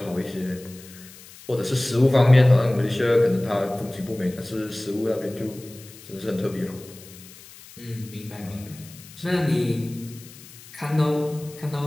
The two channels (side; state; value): left; noise; hiss, 20 dB below the sound